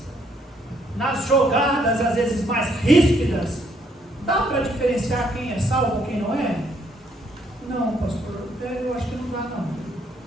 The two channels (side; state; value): both; normal; correlation 0.70